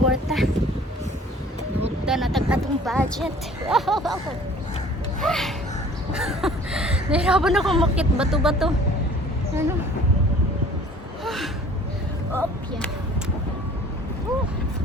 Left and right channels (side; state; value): both; normal; correlation 0.50